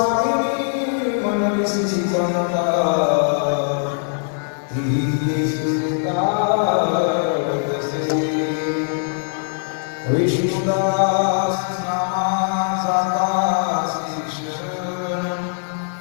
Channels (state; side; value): silent; right; 56 dB below the other